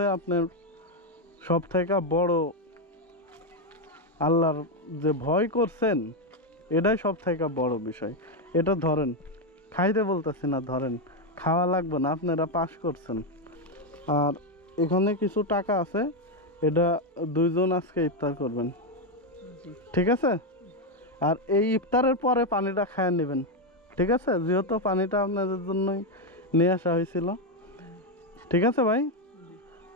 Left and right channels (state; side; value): normal; both; correlation 0.05